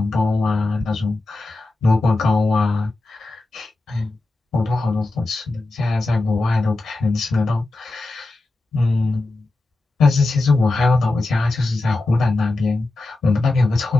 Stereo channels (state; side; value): quieter; right; 3.0 dB